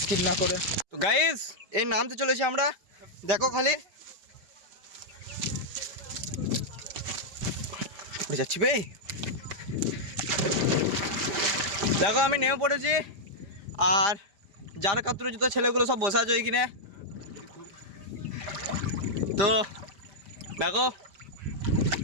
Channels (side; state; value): left; late; 5.1 ms